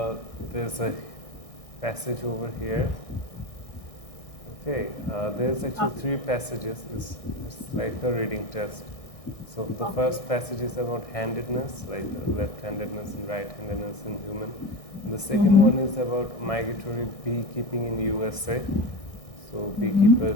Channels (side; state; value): right; late; 1.6 ms